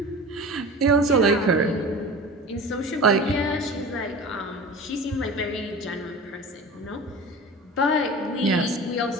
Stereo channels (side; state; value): both; normal; correlation 0.35